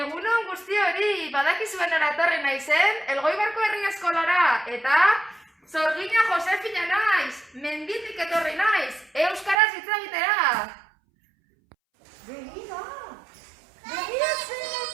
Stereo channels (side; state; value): left; drops out; at 9.6 s